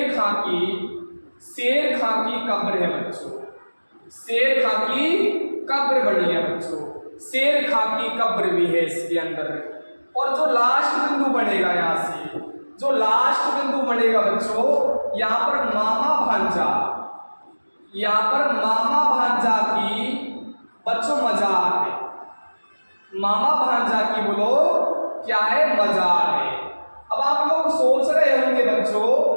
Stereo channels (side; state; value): both; inverted; correlation -1.00